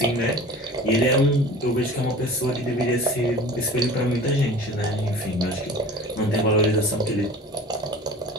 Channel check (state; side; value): normal; both; correlation 0.41